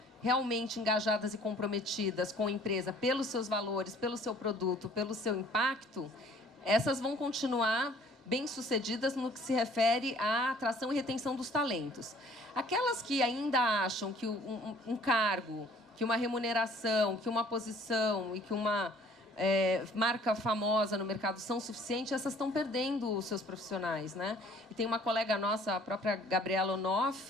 realmente engajadas e comprometidas com a empresa pelos seus valores, pelo seu produto, pelo seu impacto, essas vão continuar bem-sucedidas no que se refere à atração e retenção dos talentos. Aquelas que ainda acham que um cargo, que uma remuneração, que uma posição e que uma marca famosa no mercado são suficientes, essas estão perdendo os seus profissionais, né? E tem uma colega nossa, a própria Gabriela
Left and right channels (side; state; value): both; normal; correlation 0.55